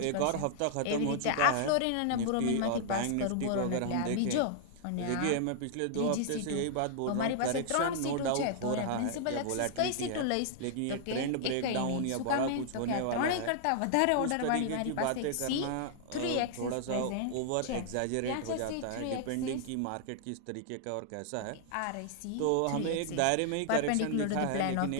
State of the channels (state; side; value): different; both; correlation -0.01